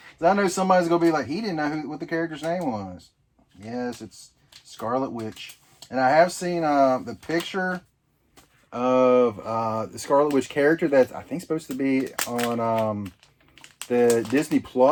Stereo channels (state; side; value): identical; both; correlation 1.00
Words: I know somebody's going to be like, he didn't know what the character's name was. Yes, it's Scarlet Witch. And I have seen the picture of the Scarlet Witch character that's, I think, supposed to be on the Disney